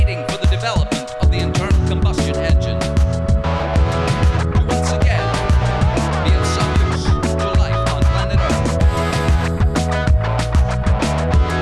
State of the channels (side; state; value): both; identical; correlation 1.00